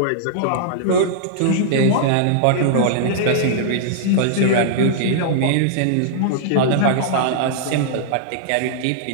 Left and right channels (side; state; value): both; different; correlation -0.01